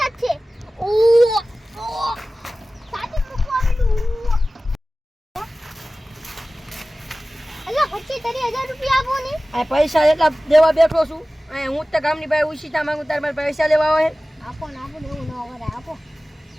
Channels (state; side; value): normal; both; correlation 0.97